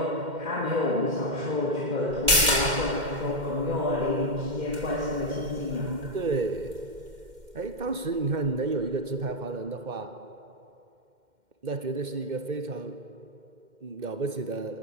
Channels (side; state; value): left; late; 2.1 ms